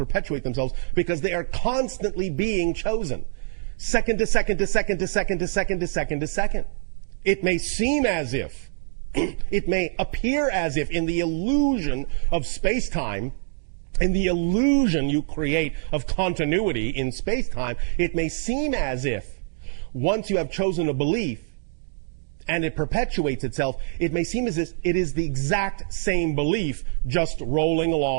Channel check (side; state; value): left; silent; digital silence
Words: themselves, because they are constantly being chosen. Second to second to second to second to second to second to second. It may seem as if, it may appear as if in the illusion of space-time, in the illusion you create of continuity in space-time, it may seem as if once you have chosen a belief and it perpetuates itself, it may seem as if it is the exact same belief just rolling